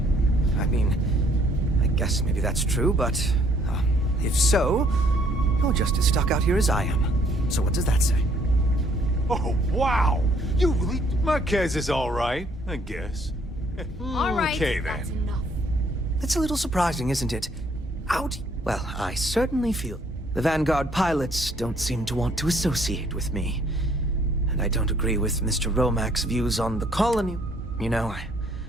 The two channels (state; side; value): normal; both; correlation 0.64